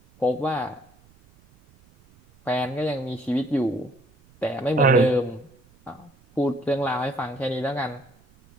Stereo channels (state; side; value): noise; right; rumble, 29 dB below the sound